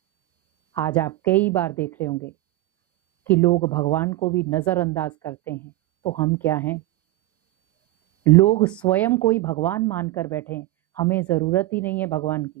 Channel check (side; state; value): left; quieter; 16.8 dB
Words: आज आप कई बार देख रहे होंगे कि लोग भगवान को भी नजरअंदाज करते हैं, तो हम क्या हैं? लोग स्वयं को ही भगवान मानकर बैठे हैं। हमें जरूरत ही नहीं है भगवान